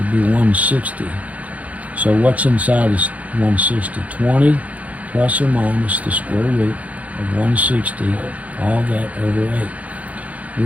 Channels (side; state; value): left; late; 0.069 ms